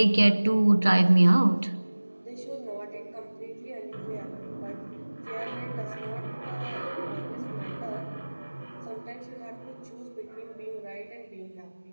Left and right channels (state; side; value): inverted; both; correlation -1.00